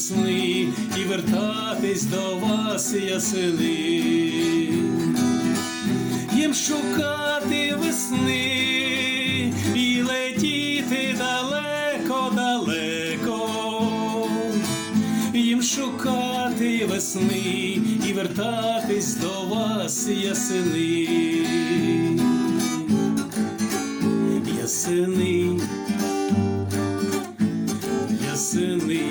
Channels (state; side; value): identical; both; correlation 1.00